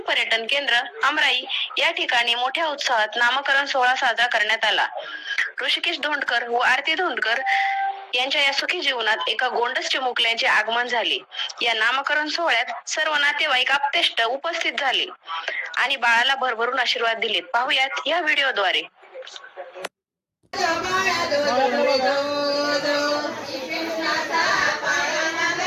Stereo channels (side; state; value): both; identical; correlation 1.00